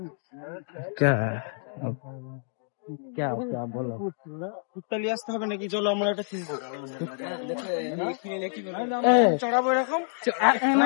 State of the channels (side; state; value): right; silent; digital silence